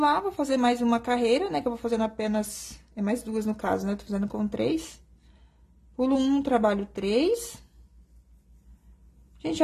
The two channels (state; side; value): identical; both; correlation 1.00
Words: vou fazer mais uma carreira, né? Que eu vou fazendo apenas... É mais 2 no caso, né? Tô fazendo com 3. Pulo 1, trabalho 3. Gente,